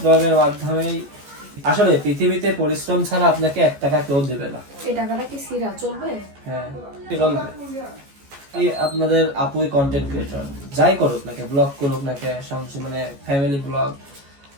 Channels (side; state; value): left; late; 14 ms